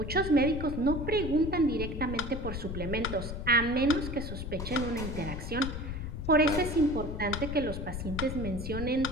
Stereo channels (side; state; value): left; noise; rumble, 6 dB below the sound